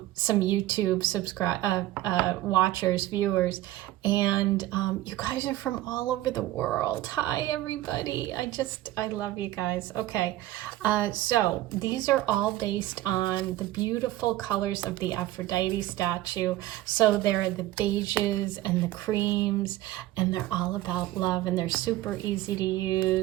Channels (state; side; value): quieter; left; 15.7 dB